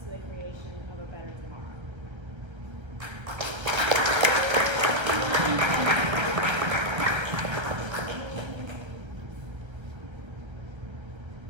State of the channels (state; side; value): late; left; 1.3 ms